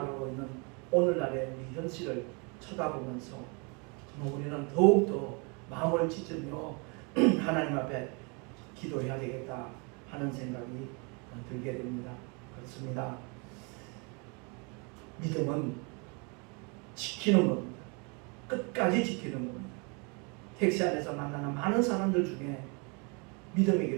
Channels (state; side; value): quieter; left; 32.4 dB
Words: 있는 오늘날의 우리 현실을 쳐다보면서 정말 우리는 더욱더 마음을 찢으며 하나님 앞에 기도해야 되겠다 하는 생각이 들게 됩니다. 그렇습니다. 믿음은 지키는 겁니다. 끝까지 지키는 겁니다. 택시 안에서 만나는 많은 사람들 중에 믿음의